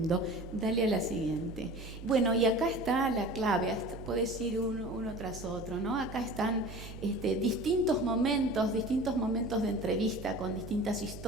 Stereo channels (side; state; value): right; noise; hum, 12 dB below the sound